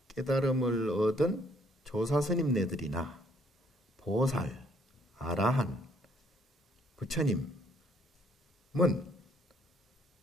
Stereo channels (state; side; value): normal; both; correlation 0.65